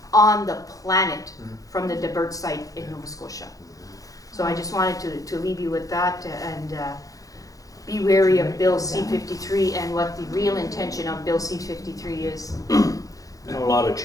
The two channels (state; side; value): late; right; 0.17 ms